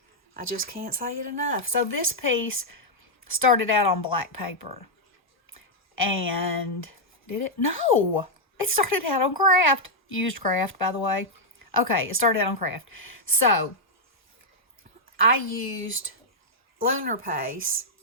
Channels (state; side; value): normal; both; correlation -0.04